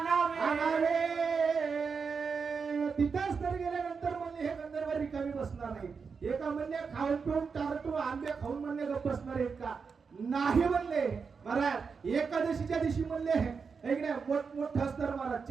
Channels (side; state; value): left; quieter; 5.5 dB